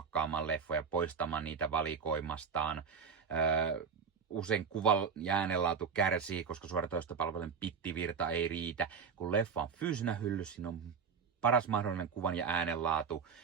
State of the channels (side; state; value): left; quieter; 6.1 dB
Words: leffoja, poistamaan niitä valikoimastaan. Usein kuvan ja äänenlaatu kärsii, koska suoratoistopalvelun pittivirta ei riitä. Kun leffa on fyysinä hyllyssä, siinä on paras mahdollinen kuvan ja äänenlaatu